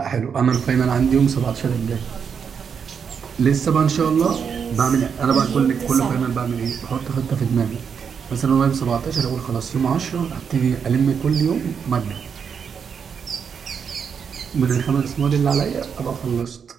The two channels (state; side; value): quieter; left; 6.8 dB